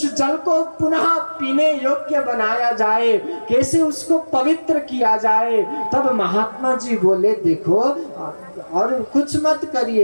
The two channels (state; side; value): inverted; both; correlation -1.00